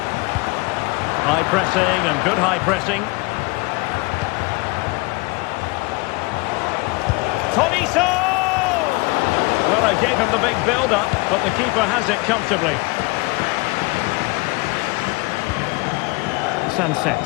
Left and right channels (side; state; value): right; quieter; 25.7 dB